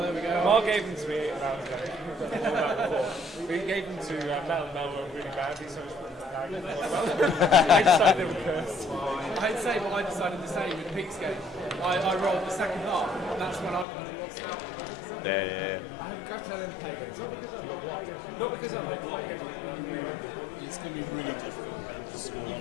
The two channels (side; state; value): right; drops out; at 13.9 s